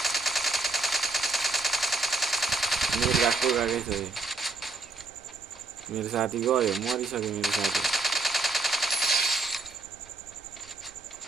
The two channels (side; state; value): left; quieter; 3.4 dB